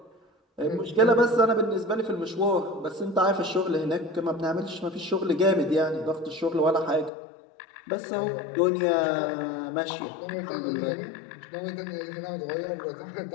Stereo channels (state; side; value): drops out; right; at 7.1 s